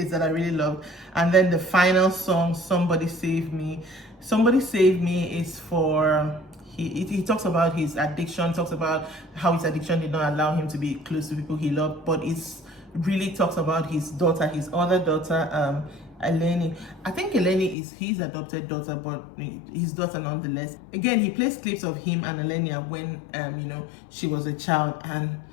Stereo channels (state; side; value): drops out; right; at 17.8 s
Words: that I really love. And then the final song, Somebody Save Me. Somebody Save Me is for, he talks about his addiction, talks about how his addiction did not allow him to be close to people he loved, but it's really talks about his daughter, his other daughter, Eleni. I think Eleni is his adopted daughter, but his daughter nonetheless. Again, he plays clips of him and Elenia when, you know, she was a child, and